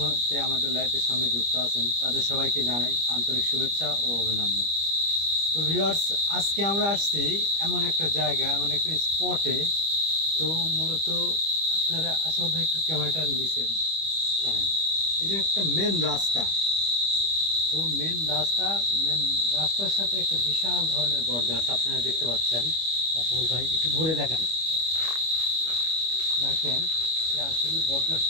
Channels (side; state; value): left; late; 25 ms